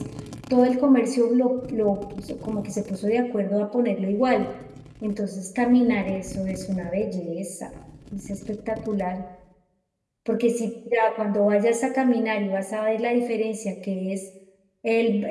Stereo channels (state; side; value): identical; both; correlation 1.00